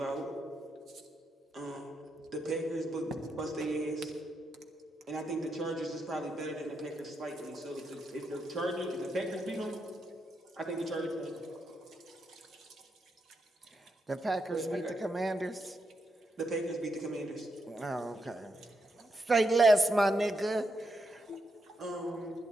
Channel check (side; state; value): both; normal; correlation 0.82